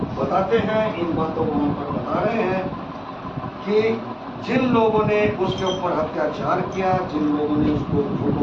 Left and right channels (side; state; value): both; identical; correlation 1.00